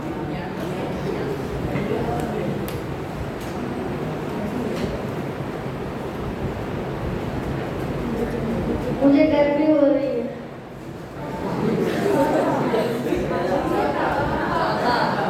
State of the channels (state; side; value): identical; both; correlation 1.00